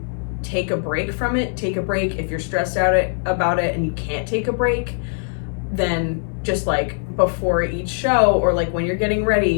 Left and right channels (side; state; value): right; silent; 64 dB below the other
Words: take a break from it, take a break. If you're stressed out about it and you can't take a break, then just like before each show or like when you're getting